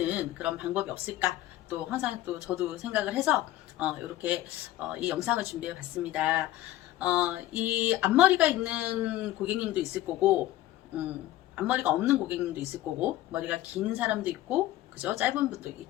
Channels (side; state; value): right; quieter; 15.0 dB